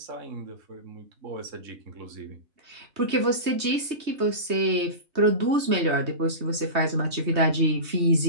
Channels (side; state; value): left; late; 3.2 ms